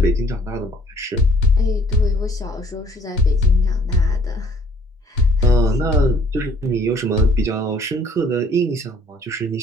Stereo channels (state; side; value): normal; both; correlation 0.60